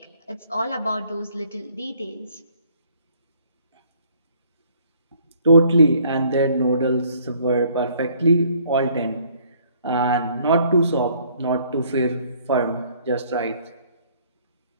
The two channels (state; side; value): inverted; both; correlation -0.61